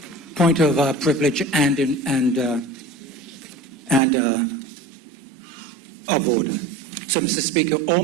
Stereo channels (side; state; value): left; drops out; at 4.0 s